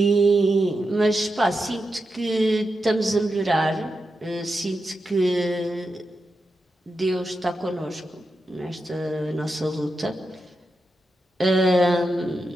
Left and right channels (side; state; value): both; normal; correlation 0.88